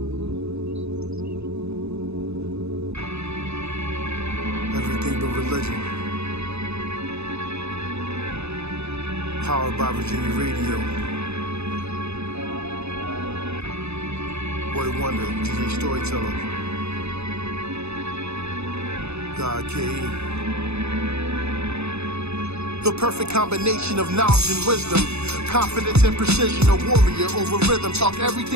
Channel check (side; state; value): left; late; 0.80 ms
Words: but religion. Powered by Virginia Radio. Boy Wonder, DJ Storyteller. God K.E. The perfect combination of knowledge and wisdom. Confidence and precision, a warrior over rhythm. Talk